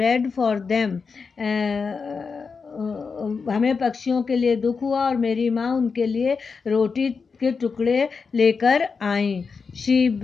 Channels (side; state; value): right; quieter; 5.1 dB